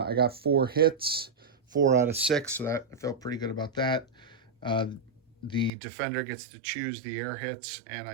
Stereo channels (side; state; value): left; drops out; at 5.7 s